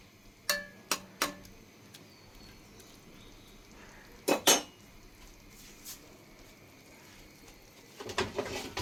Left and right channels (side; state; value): both; identical; correlation 1.00